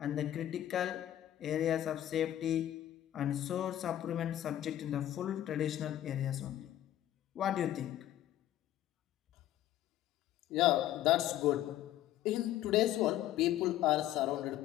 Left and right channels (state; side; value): quieter; right; 12.8 dB